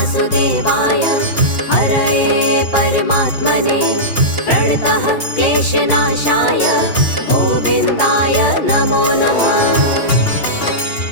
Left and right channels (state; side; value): late; right; 2.8 ms